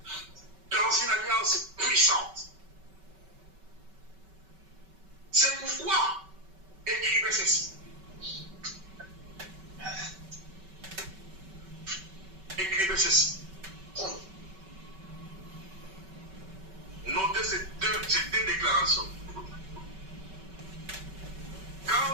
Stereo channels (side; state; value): left; late; 5.3 ms